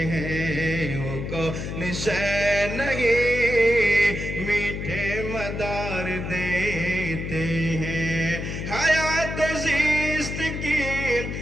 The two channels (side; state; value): left; noise; hum, 5 dB below the sound